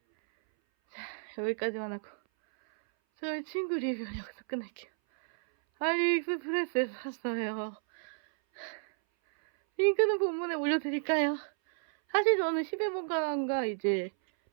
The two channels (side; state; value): left; silent; 57 dB below the other